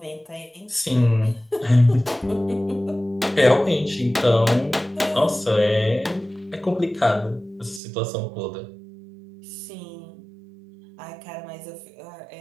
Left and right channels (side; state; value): left; drops out; at 7.8 s